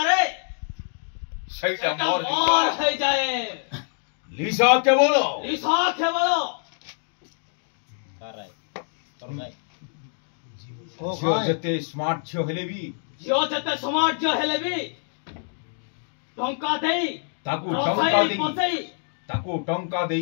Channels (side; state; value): right; silent; digital silence